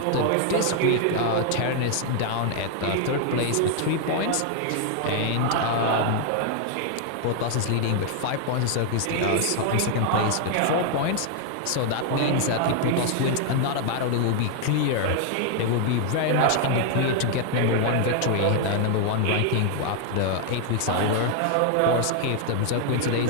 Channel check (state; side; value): different; both; correlation 0.00